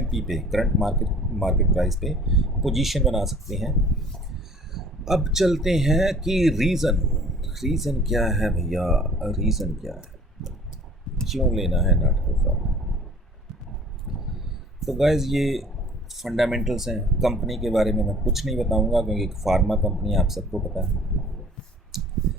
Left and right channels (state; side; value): normal; both; correlation 0.51